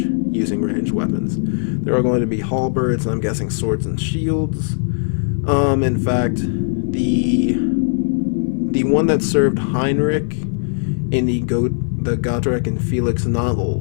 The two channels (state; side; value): silent; right; 62 dB below the other